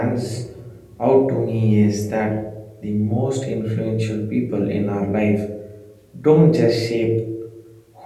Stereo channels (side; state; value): both; identical; correlation 1.00